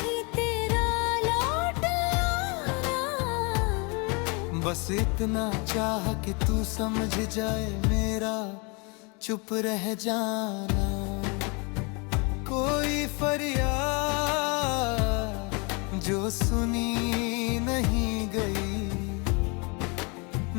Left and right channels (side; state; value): right; quieter; 31.3 dB